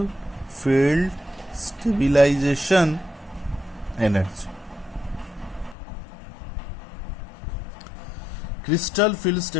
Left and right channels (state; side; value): drops out; right; at 5.8 s